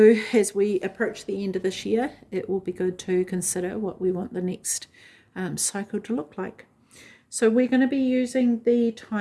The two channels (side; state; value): both; identical; correlation 1.00